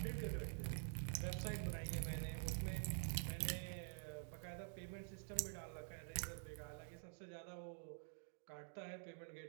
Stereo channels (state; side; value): silent; left; digital silence